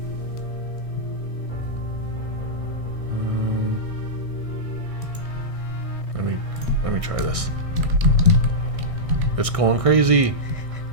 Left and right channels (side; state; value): left; late; 1.6 ms